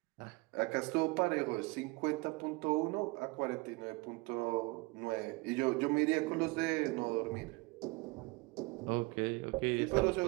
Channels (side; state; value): left; quieter; 25.4 dB